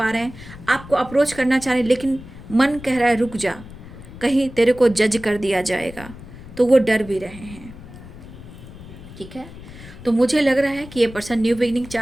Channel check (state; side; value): noise; left; rumble, 16 dB below the sound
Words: रहे हैं, आपको अप्रोच करना चाह रहे हैं, लेकिन मन कह रहा है रुक जा, कहीं तेरे को जज कर दिया जाएगा, तो वो डर भी रहे हैं, ठीक है। तो मुझे लग रहा है कि ये पर्सन न्यू बिगिनिंग